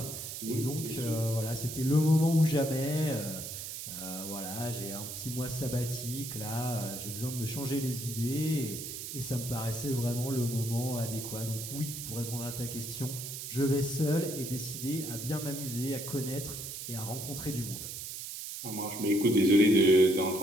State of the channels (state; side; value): noise; right; hiss, 7 dB below the sound